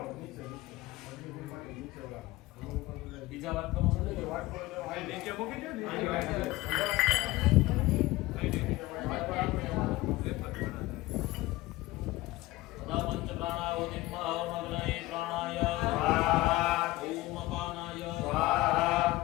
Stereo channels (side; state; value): right; quieter; 18.7 dB